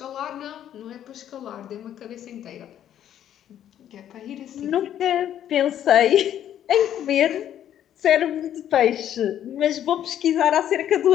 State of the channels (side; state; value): right; quieter; 10.7 dB